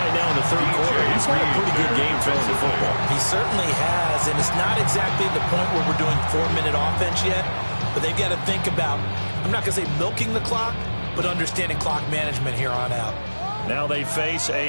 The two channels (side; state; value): both; inverted; correlation -1.00